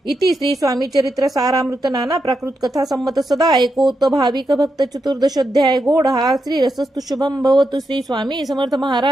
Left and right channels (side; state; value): both; normal; correlation 0.85